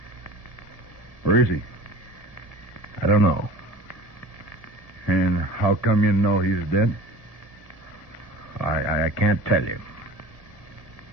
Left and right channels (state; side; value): late; right; 1.7 ms